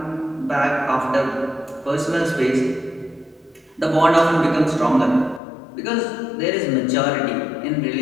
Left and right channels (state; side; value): drops out; right; at 5.4 s